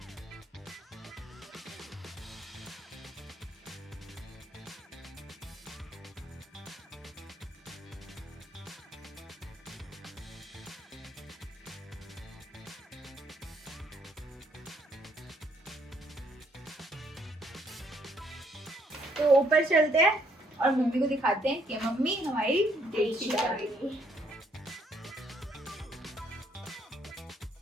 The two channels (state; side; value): normal; both; correlation 0.68